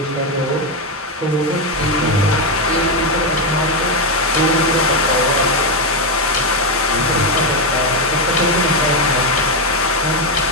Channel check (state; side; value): normal; both; correlation 0.07